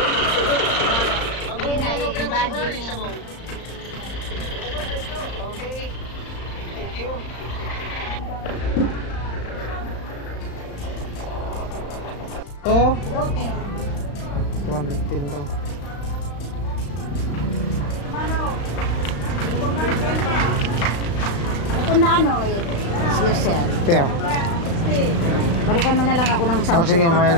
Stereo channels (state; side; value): late; right; 35 ms